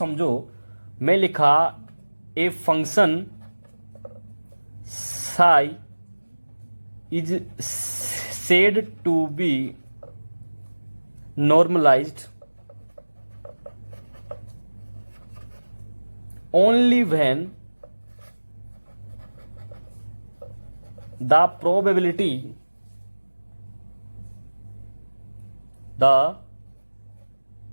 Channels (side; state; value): both; inverted; correlation -1.00